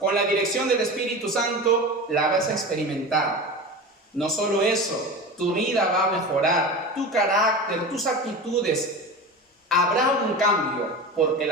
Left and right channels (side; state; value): both; normal; correlation 0.29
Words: la dirección del Espíritu Santo, la vas a experimentar. No solo eso, tu vida va a mejorar, tu carácter, tus actitudes. Habrá un cambio porque